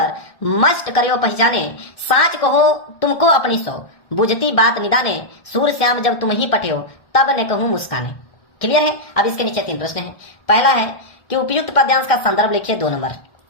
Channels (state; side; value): late; right; 1.6 ms